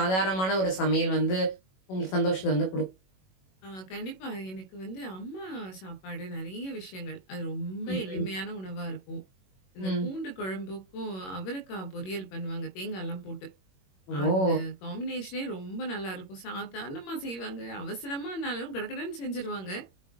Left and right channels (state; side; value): late; right; 21 ms